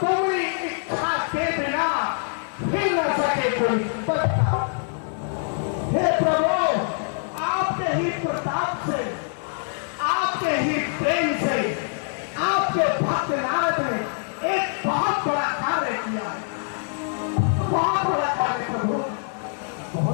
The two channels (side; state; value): right; silent; digital silence